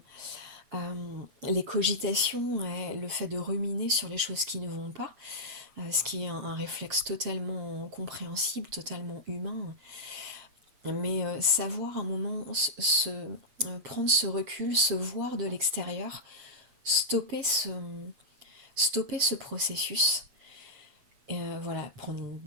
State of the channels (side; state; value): left; late; 7.5 ms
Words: les cogitations, le fait de ruminer sur les choses qui ne vont pas, ce qui est un réflexe totalement compréhensible, totalement humain, mais savoir un moment prendre ce recul, se voir de l'extérieur, stopper ce processus, et voilà, prendre une